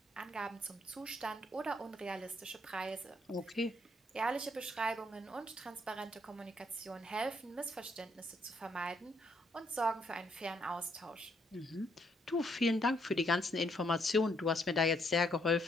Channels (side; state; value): both; normal; correlation 0.72